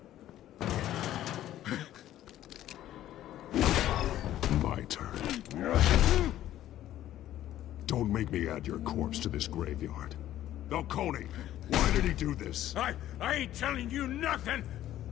My turn. Don't make me add your corpse to this graveyard. Falcone, why did he do this? I ain't telling you nothing!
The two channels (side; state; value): right; quieter; 12.9 dB